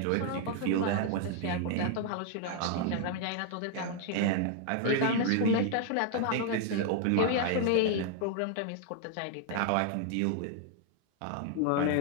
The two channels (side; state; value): both; different; correlation 0.00